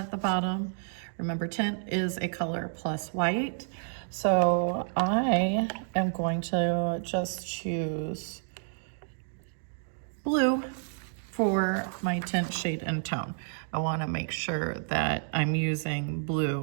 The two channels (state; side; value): silent; left; digital silence